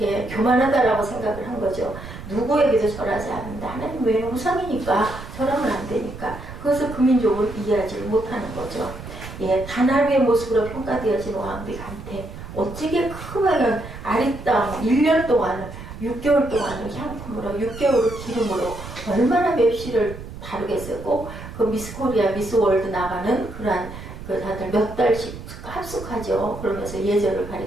교만하다라고 생각을 한 거죠. 누구에게도 절하지 않는다. 하나님 외에는 우상이니까 절하면 안 되니까 그것을 그 민족은 이해하지 못하는 거죠. 단 하루의 모습으로 평가되어진 왕비 간태 어찌게 크면 아리따운 1년 동안 6개월 동안을 향품으로 6개월을 기름으로 얼마나 맵시를 다르겠어요. 꼭 그 미스 코리아, 미스 월드 나가는 그러한 그 다들 몇 달씩 합숙하죠. 그러면서 예절을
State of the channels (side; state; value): right; noise; rumble, 12 dB below the sound